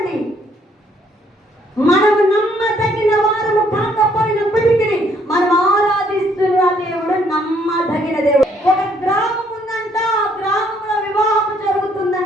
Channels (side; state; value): both; normal; correlation 0.67